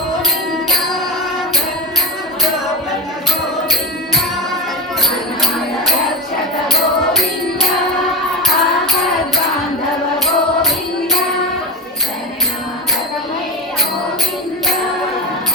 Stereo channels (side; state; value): both; normal; correlation 0.20